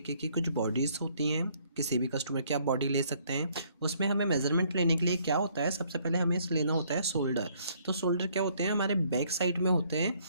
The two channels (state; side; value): inverted; both; correlation -0.65